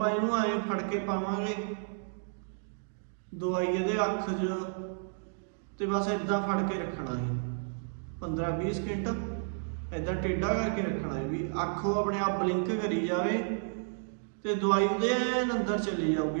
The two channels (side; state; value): left; silent; digital silence